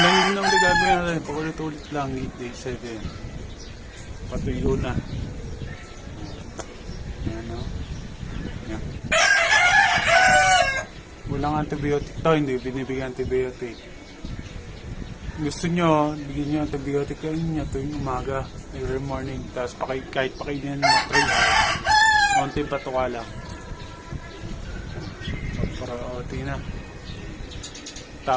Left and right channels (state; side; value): identical; both; correlation 1.00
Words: yun ang gagawin natin. Paulit-ulit lang, day 7. Patuyo na. Yan, no? Yan. Walang antibiotic to, hindi binibigyan antibiotic. Gusto nyo, bigyan nyo antibiotic kain nyo tuwing umaga, every morning. Tapos kahit pakainin nyo 3 hours. Konting patuka lang. Para tingnan.